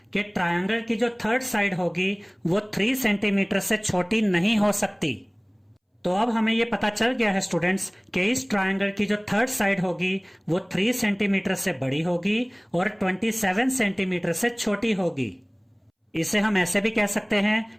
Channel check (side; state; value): both; identical; correlation 1.00